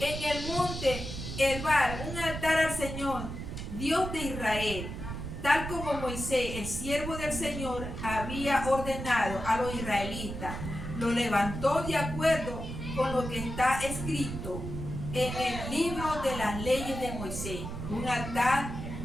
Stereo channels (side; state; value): right; noise; rumble, 7 dB below the sound